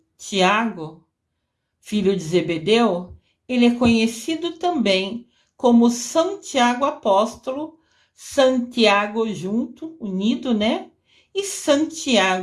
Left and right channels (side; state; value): both; identical; correlation 1.00